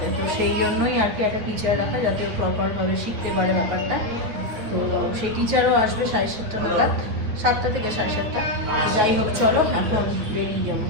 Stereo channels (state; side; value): late; left; 9.4 ms